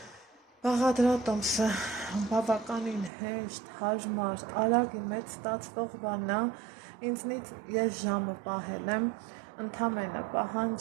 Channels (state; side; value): drops out; left; at 3.1 s